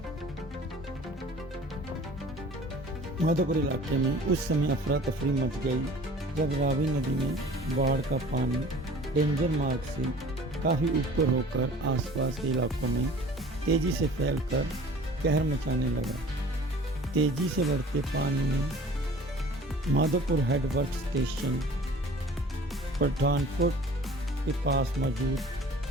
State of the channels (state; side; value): normal; both; correlation 0.47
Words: माधोपुर इलाके में उस समय अफरा तफरी मच गई जब रावी नदी में बाढ़ का पानी डेंजर मार्ग से काफ़ी ऊपर होकर आसपास के इलाकों में तेज़ी से फैलकर कहर मचाने लगा। तेज़ी से बढ़ते पानी ने माधोपुर हेडवर्क स्टेशन पठानकोट के पास मौजूद